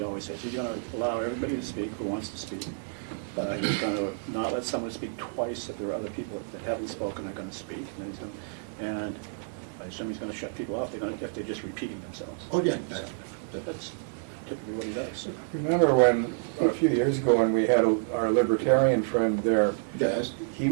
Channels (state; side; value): silent; left; digital silence